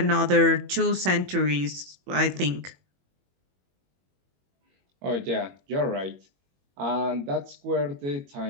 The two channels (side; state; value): left; late; 21 ms